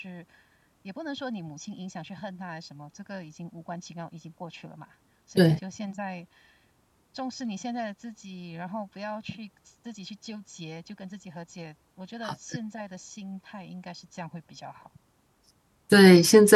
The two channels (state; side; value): identical; both; correlation 1.00